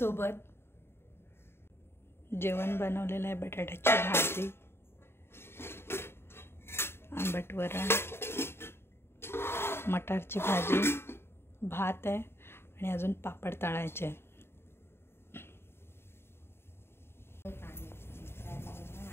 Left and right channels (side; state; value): right; late; 0.12 ms